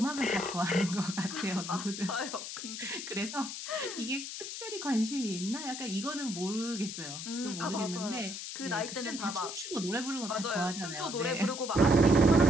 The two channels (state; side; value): noise; left; hiss, 7 dB below the sound